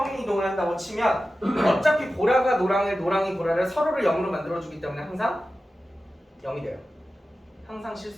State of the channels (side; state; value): both; normal; correlation 0.94